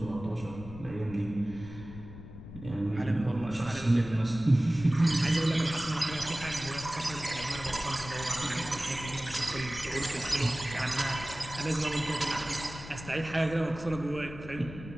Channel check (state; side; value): noise; left; rumble, 13 dB below the sound